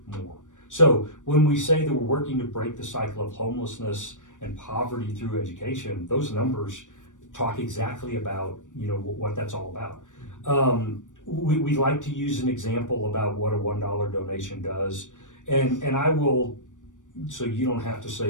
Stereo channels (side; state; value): right; late; 0.87 ms